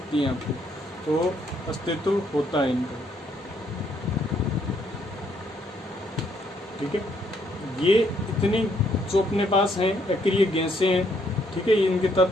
हैं आपको, तो अस्तित्व होता है इनका। ठीक है, ये इतनी जो अपने पास हैं अक्रिय गैसें हैं, ठीक है, इनके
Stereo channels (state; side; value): normal; both; correlation 0.70